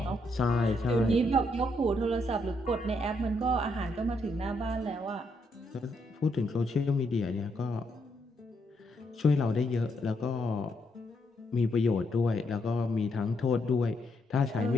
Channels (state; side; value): normal; both; correlation 0.77